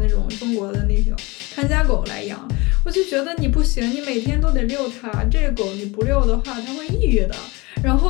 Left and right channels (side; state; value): right; quieter; 24.7 dB